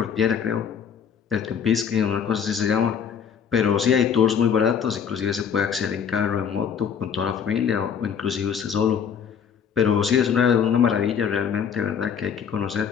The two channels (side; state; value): right; quieter; 7.4 dB